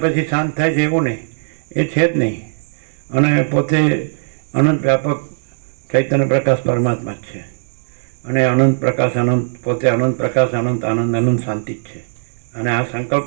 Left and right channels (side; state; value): left; silent; digital silence